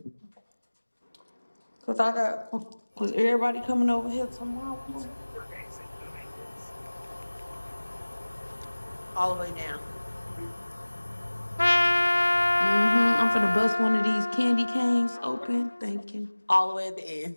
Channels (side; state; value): both; inverted; correlation -1.00